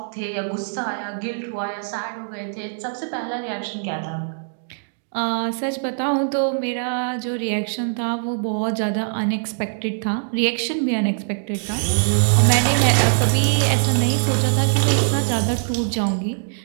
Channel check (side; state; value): left; silent; digital silence